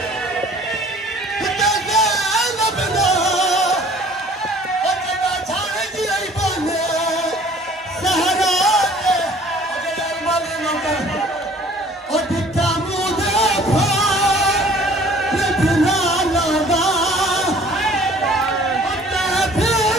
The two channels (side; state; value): both; normal; correlation 0.53